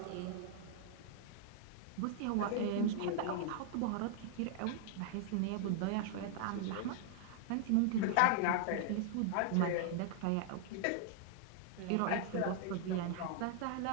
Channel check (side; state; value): both; different; correlation 0.00